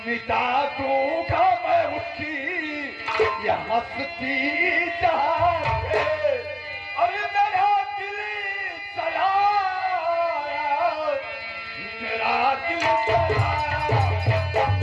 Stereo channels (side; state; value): both; identical; correlation 1.00